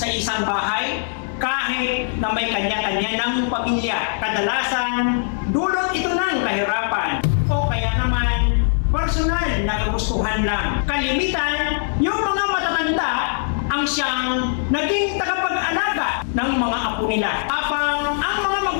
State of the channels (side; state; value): right; silent; digital silence